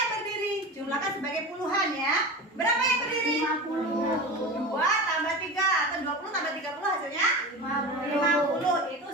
berdiri? Jumlahkan sebagai puluhan ya. Berapa yang berdiri? 50. 2 tambah 3 atau 20 tambah 30 hasilnya? 50. Itu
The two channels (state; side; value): normal; both; correlation 0.29